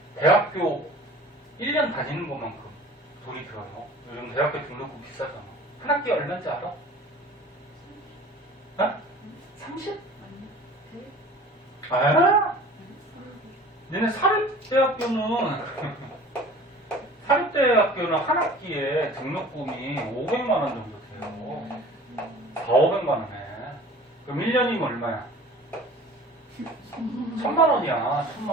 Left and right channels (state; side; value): normal; both; correlation 0.44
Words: 대학교 1년 다니는 것만큼 돈이 들어요. 요즘 대학교 등록금 비싸잖아. 한 학기에 얼마인지 알아? 어? 30? 아? 니네 사립대학교는 한 학기에 등록금이 500만 원 정도 돼요. 4,500만 원에. 그럼 1년이면 얼마야? 1,000만 원이야. 1,000만